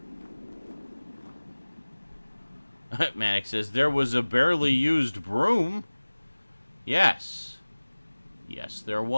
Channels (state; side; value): inverted; both; correlation -1.00